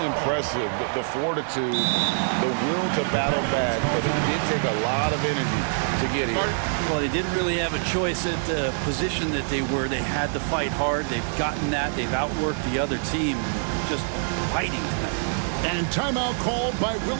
impressive, the fortitude, the will to battle back, but it did take a lot of energy to get here. Well, they didn't really have a choice at the position that they were. They had to fight hard. They've gotten that. They've outworked the other team, just fighting tonight. And timeout called by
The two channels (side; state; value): left; silent; digital silence